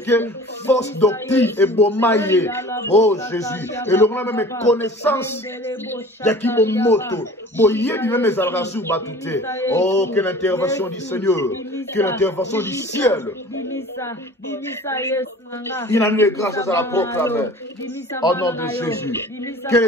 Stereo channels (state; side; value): normal; both; correlation 0.44